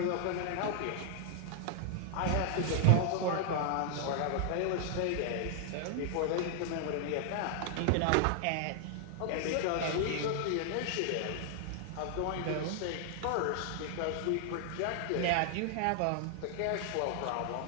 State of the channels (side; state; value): both; different; correlation 0.00